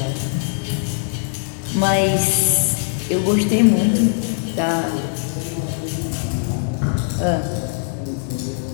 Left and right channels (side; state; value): right; silent; digital silence